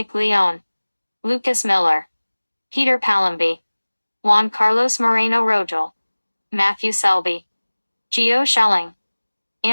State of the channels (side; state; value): both; inverted; correlation -1.00